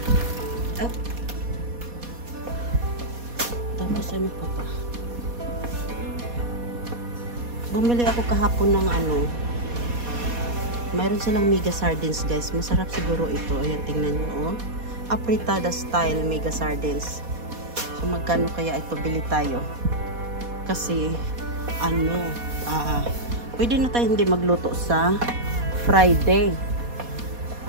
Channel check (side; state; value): left; late; 4.2 ms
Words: Tapos ano pa ba? Bumili ako kahapon ng mayroon silang mega sardines guys. Masarap siguro ito. Ayan, tingnan nyo apritada style mega sardines. So magkano kaya ito, bili tayo? Kasi pwede na tayo hindi magluto sa Friday.